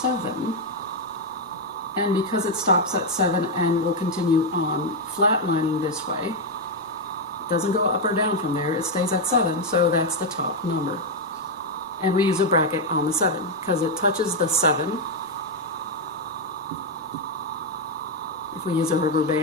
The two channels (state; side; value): normal; both; correlation 0.02